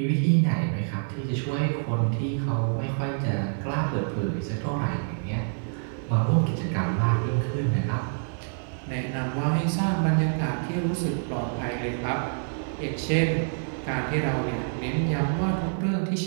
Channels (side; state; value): left; silent; digital silence